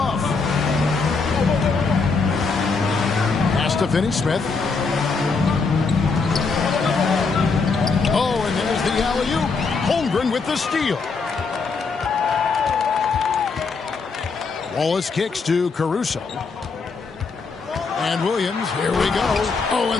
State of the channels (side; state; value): right; quieter; 4.6 dB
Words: Pass to Finney-Smith. Oh, and there's the alley-oop. Holmgren with the steal. Wallace kicks to Caruso. And Williams, here we go. Oh, and